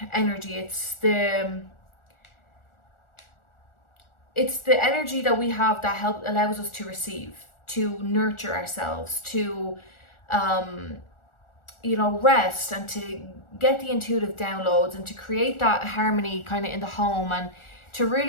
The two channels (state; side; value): late; right; 1.4 ms